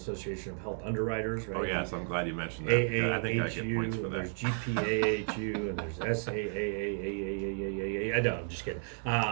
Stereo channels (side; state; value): left; silent; 56 dB below the other